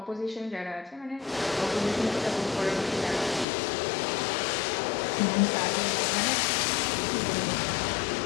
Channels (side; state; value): right; drops out; at 3.5 s